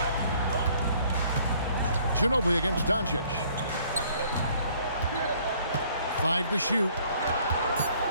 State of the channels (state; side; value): inverted; both; correlation -0.60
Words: Ginobili against Doncic. 5 to shoot.